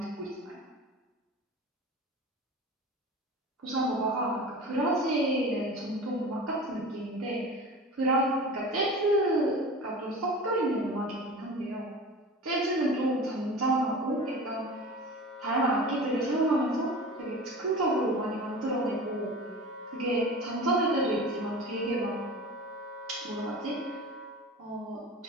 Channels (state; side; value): normal; both; correlation 0.35